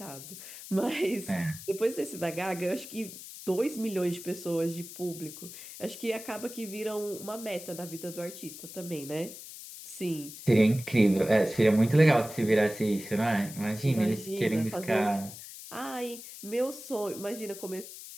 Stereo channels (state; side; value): noise; left; hiss, 13 dB below the sound